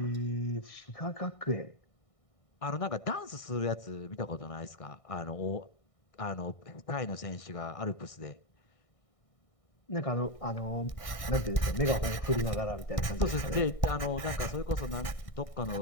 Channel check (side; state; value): right; late; 1.6 ms